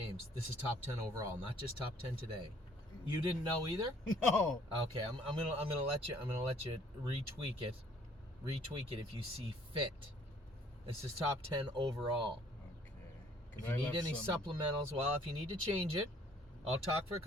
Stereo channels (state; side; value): normal; both; correlation 0.59